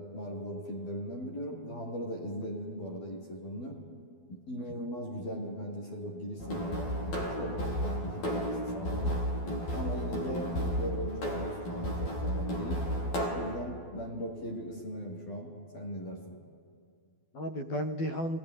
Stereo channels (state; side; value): late; right; 12 ms